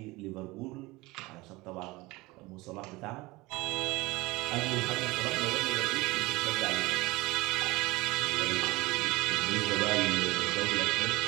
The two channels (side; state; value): left; quieter; 21.7 dB